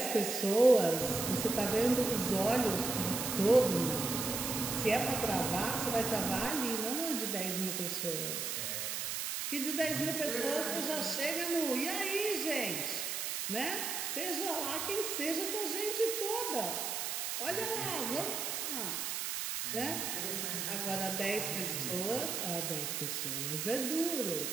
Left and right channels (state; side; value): noise; right; hiss, 2 dB below the sound